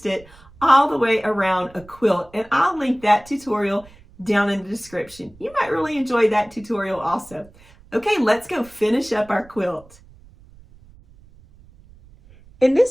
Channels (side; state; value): right; noise; rumble, 25 dB below the sound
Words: it all the way around a quilt. And I'll link that tutorial down in the description. You might really enjoy that tutorial also. Okay, let's go finish up our quilt. In